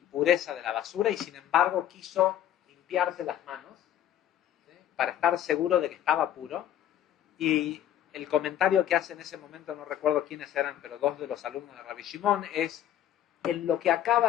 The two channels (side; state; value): right; quieter; 11.1 dB